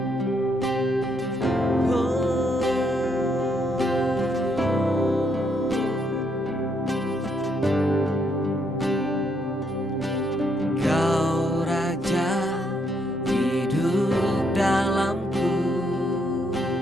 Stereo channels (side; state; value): both; normal; correlation 0.75